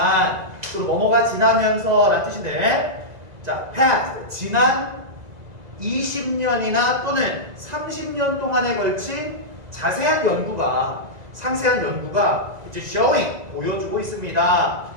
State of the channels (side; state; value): left; late; 2.0 ms